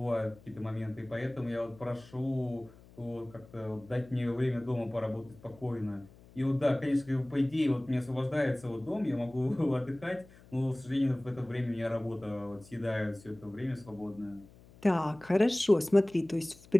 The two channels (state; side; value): noise; left; hum, 23 dB below the sound